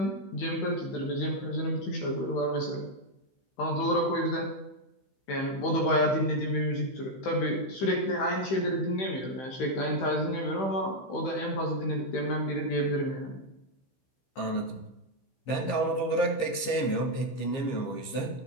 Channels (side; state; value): right; late; 15 ms